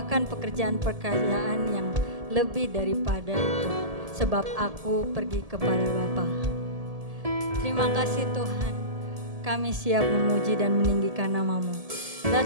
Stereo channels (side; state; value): left; late; 1.7 ms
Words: pekerjaan-pekerjaan yang lebih daripada itu, sebab aku pergi kepada Bapa. Terima kasih Tuhan, kami siap memuji dan meninggikan nama-Mu.